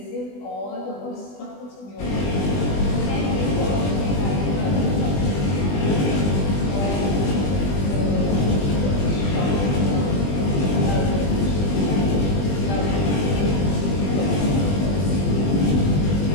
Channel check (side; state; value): right; late; 20 ms